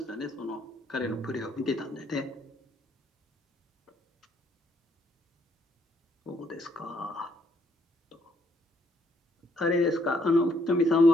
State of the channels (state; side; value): normal; both; correlation 0.70